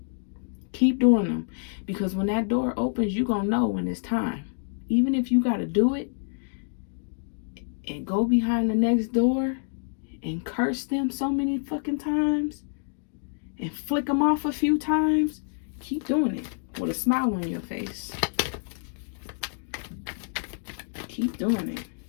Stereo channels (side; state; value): right; silent; digital silence